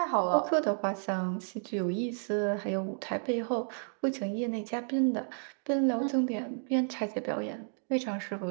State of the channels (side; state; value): left; silent; digital silence